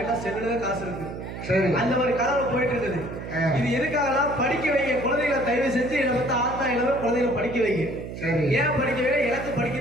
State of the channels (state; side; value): noise; right; hum, 9 dB below the sound